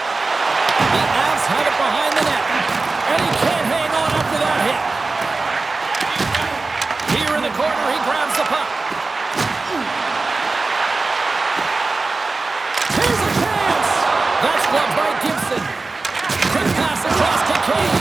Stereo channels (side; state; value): left; quieter; 3.7 dB